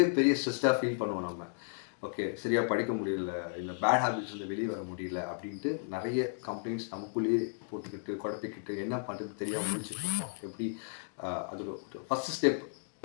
பெரிய ஸ்ட்ரெஸ்ஸா ஃபீல் பண்ணுவோம் நம்ம. ஓகே, சரியா படிக்க முடியல, இல்ல பேட் ஹேபிட்ஸ்லருந்து வெளிய வர முடியல அப்படின்ட்டு நெறைய கம்ப்ளைண்ட்ஸ் நமக்குள்ளேயே போட்டுக்கிட்டு, குழப்பிக்கிட்டு என்ன பண்றதுன்னு தெரியாம முழிச்சுட்டு இருப்போம். எப்படி அதோட ஃபர்ஸ்ட் ஸ்டெப்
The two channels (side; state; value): right; silent; digital silence